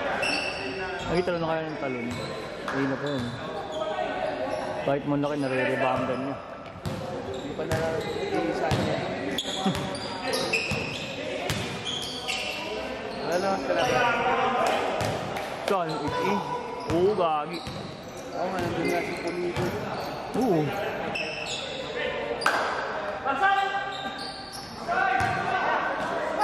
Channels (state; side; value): identical; both; correlation 1.00